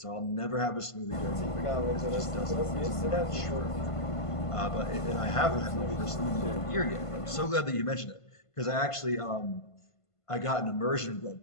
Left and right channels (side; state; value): right; late; 1.5 ms